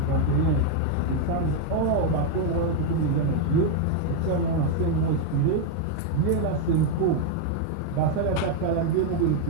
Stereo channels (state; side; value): different; both; correlation 0.00